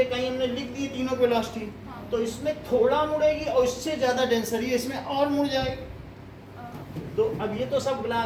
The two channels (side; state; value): both; identical; correlation 1.00